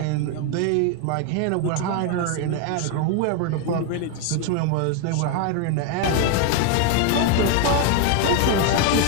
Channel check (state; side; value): different; both; correlation 0.01